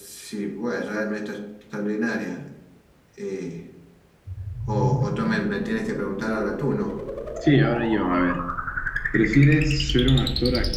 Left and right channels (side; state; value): both; identical; correlation 1.00